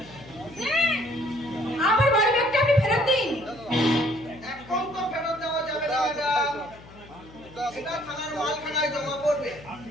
আমার বাড়ি ব্যাগটা আপনি ফেরত দিন। এখন তো ফেরত দেওয়া যাবে না ম্যাডাম, এটা থানার মালখানায় জমা পড়বে।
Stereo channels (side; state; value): left; noise; hum, 21 dB below the sound